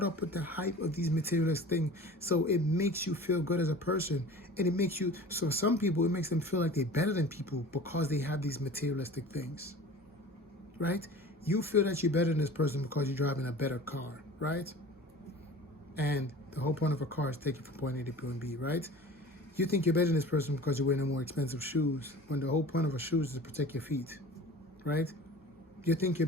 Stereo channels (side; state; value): both; normal; correlation 0.40